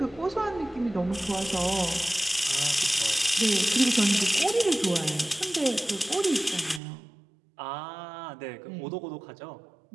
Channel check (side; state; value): left; drops out; at 6.8 s